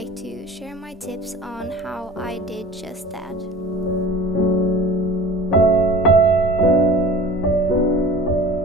to share my tips on how I did just that.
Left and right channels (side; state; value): both; normal; correlation 0.40